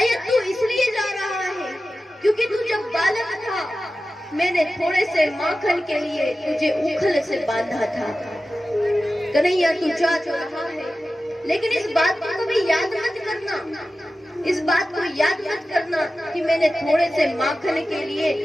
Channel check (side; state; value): both; normal; correlation 0.94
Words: तू इसलिए जा रहा है क्योंकि तू जब बालक था, मैंने थोड़े से माखन के लिए तुझे उखल से बांधा था। कन्हैया, तू जा तो रहा है, लेकिन इस बात को कभी याद मत करना, इस बात को याद मत करना कि मैंने थोड़े से माखन के लिए